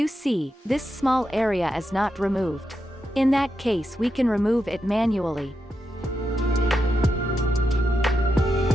see, this small area is not removed. In that case we can remove it manually.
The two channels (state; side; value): normal; both; correlation 0.86